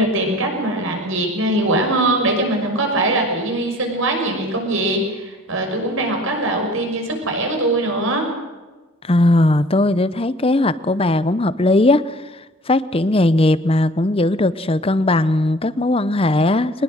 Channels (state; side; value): normal; both; correlation 0.49